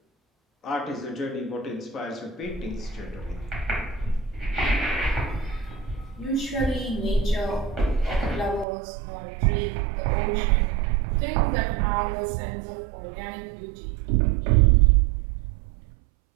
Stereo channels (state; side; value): drops out; left; at 8.7 s